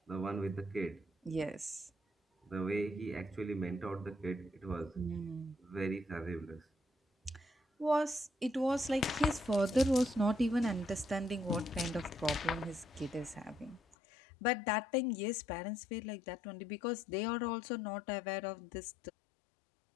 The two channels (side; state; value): right; drops out; at 14.0 s